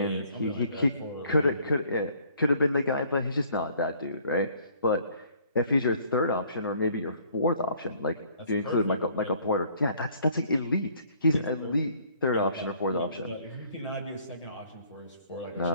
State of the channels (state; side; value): inverted; both; correlation -0.60